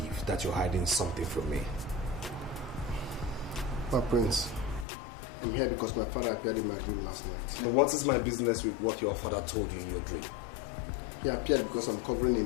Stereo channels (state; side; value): drops out; right; at 4.9 s